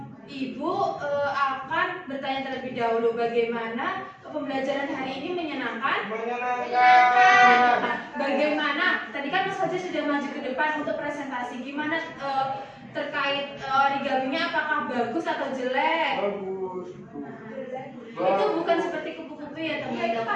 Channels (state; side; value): identical; both; correlation 1.00